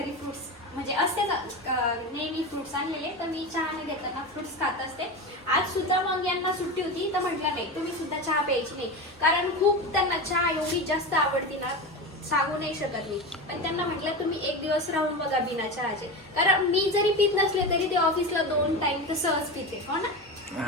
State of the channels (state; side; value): normal; both; correlation 0.23